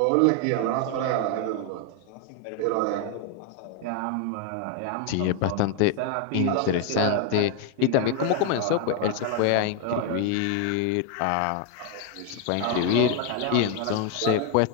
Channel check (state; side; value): different; both; correlation 0.01